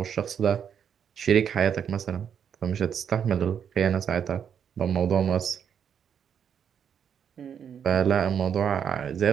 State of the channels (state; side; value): quieter; left; 8.0 dB